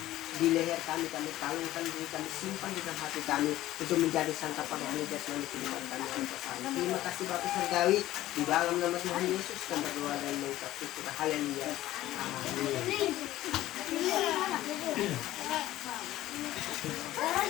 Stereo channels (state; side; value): quieter; right; 15.0 dB